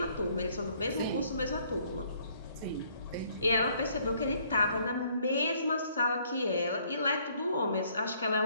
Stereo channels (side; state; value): both; inverted; correlation -0.64